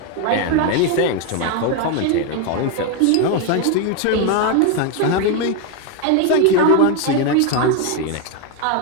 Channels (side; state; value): both; different; correlation 0.01